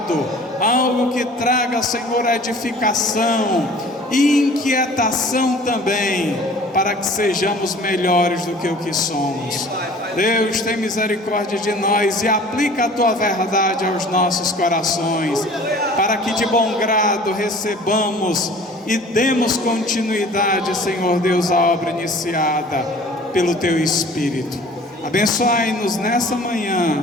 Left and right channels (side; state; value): both; normal; correlation 0.47